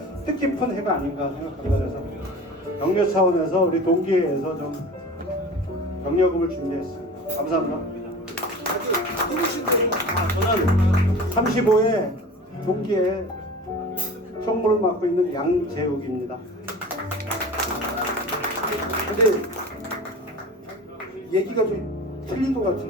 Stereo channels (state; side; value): normal; both; correlation 0.37